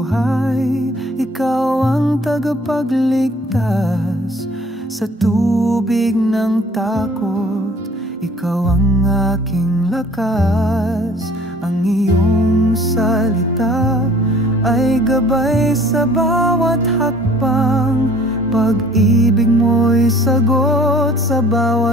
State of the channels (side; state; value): both; normal; correlation 0.53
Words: ikaw ang tagapagligtas. Sa tubig ng takot, ikaw ang aking lakas. Ang iyong salita ay gabay sa bawat hakbang. Pag-ibig mo'y sagot sa